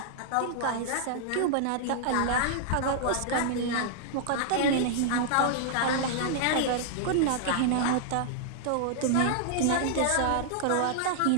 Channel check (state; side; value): different; both; correlation -0.01